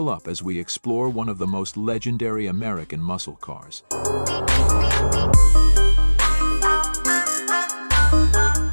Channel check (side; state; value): both; inverted; correlation -1.00